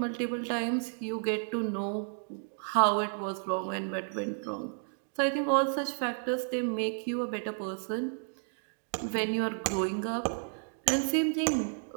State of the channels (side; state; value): left; silent; digital silence